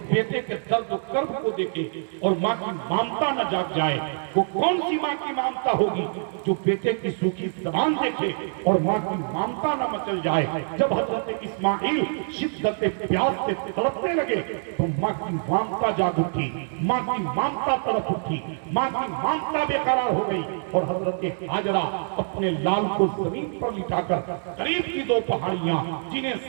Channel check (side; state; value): left; silent; digital silence